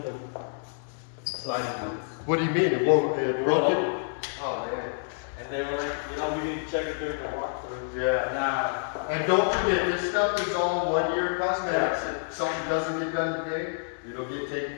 the sliding doors. What do you mean? It won't? It broke won't. it? Oh man. And they were like, we need to check it during the walk. Yeah. And don't forget, this stuff is all 1 year cosmetics. If something doesn't get done today, it'll get taken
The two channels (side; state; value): right; silent; 59 dB below the other